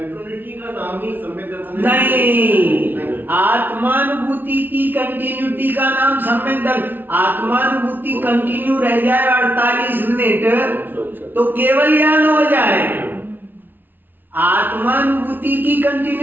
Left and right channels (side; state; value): left; late; 0.092 ms